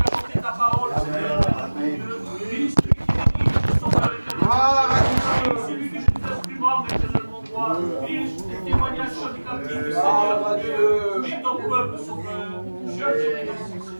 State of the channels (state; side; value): inverted; both; correlation -1.00